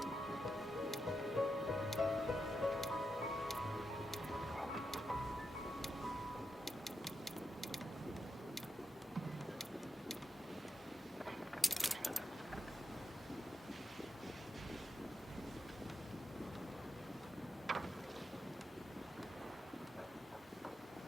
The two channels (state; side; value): normal; both; correlation 0.85